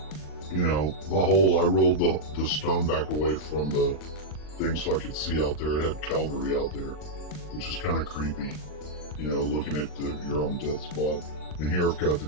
hole. I rolled the stone back away from the thing so I could see out there. It had Calvary out there, which is kind of creepy, looking at your own death spot. And here I've got the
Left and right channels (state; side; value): late; right; 40 ms